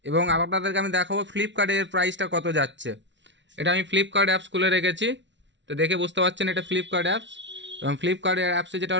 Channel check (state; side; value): late; left; 0.53 ms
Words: এবং আপনাদেরকে আমি দেখাবো ফ্লিপকার্টের প্রাইসটা কত যাচ্ছে। এটা আমি ফ্লিপকার্ট অ্যাপস খুলে রেখেছি, তো দেখে বুঝতে পারছেন এটা ফ্লিপকার্ট অ্যাপস। এবং ফ্লিপকার্টের অ্যাপসে